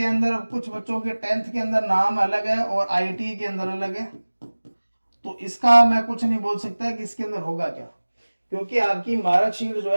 अंदर, कुछ बच्चों के 10th के अंदर नाम अलग है और आईटी के अंदर अलग है, तो इसका मैं कुछ नहीं बोल सकता कि इसके अंदर होगा क्या, क्योंकि आपकी मार्कशीट जो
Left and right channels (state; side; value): inverted; both; correlation -1.00